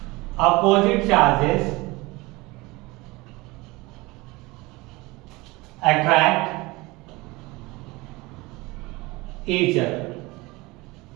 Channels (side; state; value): left; quieter; 22.7 dB